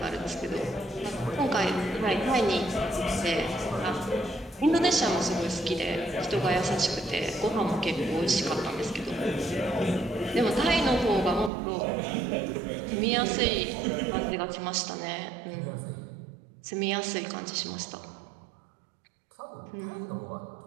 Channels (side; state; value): left; drops out; at 11.5 s